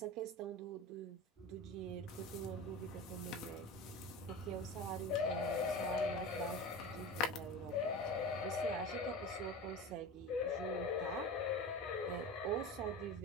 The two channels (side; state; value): both; normal; correlation 0.30